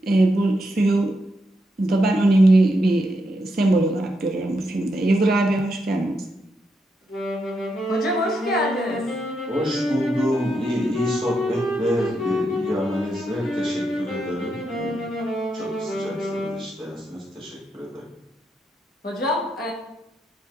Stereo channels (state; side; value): normal; both; correlation 0.82